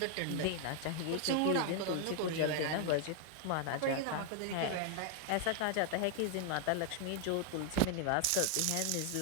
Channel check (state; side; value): different; both; correlation 0.00